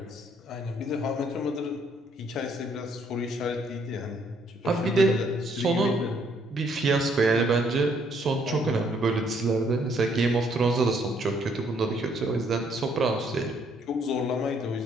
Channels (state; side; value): normal; both; correlation 0.68